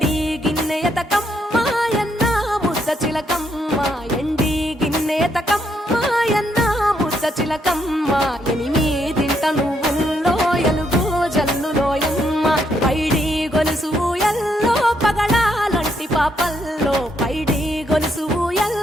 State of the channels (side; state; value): both; normal; correlation 0.75